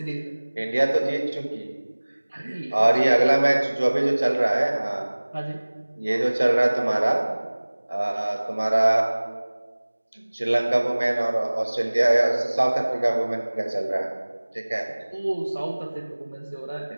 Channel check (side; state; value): both; inverted; correlation -1.00